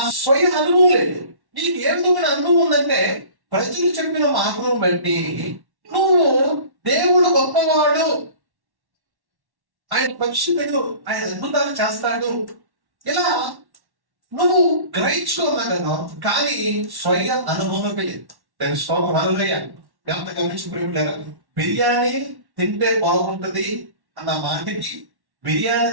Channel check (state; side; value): late; left; 1.1 ms